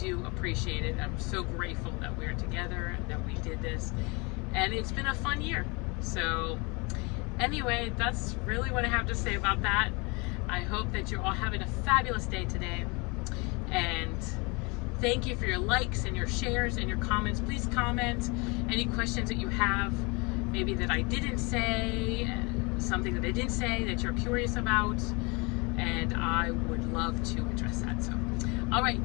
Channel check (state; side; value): quieter; right; 28.6 dB